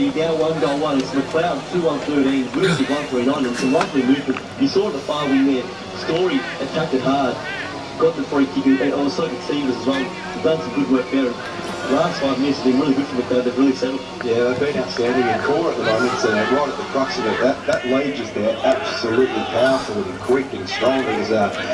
now 1-1. It's Macleod 2-1-13, Whittlesea 1-3-9, and some lovely movement. You saw the far wing there. Story attacked it hard. Got the free kick, and also could Stevens as well. They've done some good work there. The last 5 minutes have been really good for Macleod. They've really settled. Yeah, they've been outstanding in core at the moment, so right at the crux of it. That lead just there, absolutely powerful and quick and strong. He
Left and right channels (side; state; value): both; identical; correlation 1.00